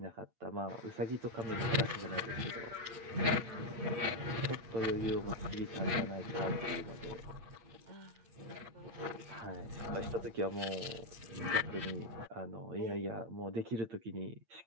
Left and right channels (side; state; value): left; late; 8.8 ms